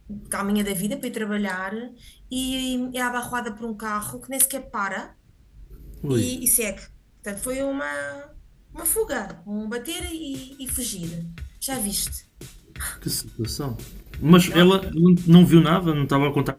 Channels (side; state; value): both; identical; correlation 1.00